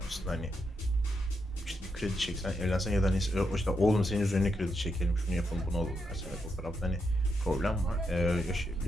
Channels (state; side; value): normal; both; correlation 0.82